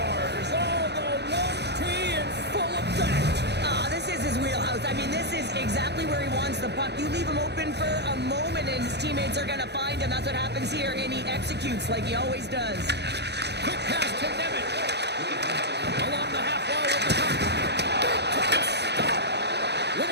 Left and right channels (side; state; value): left; late; 0.49 ms